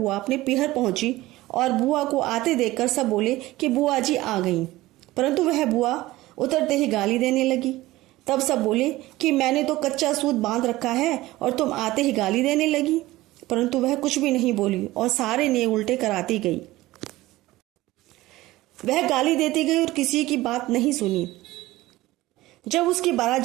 अपने पीहर पहुंची और बुआ को आते देखकर सब बोले कि बुआ जी आ गई, परंतु वह बुआ उतरते ही गाली देने लगी। तब सब बोले कि मैंने तो कच्चा सूत बांध रखा है और तुम आते ही गाली देने लगी, परंतु वह कुछ भी नहीं बोली और सारे नियम उल्टे कराती गई। वह गाली देती गई और किसी की बात नहीं सुनी। जब उसकी बारात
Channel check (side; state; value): left; quieter; 17.8 dB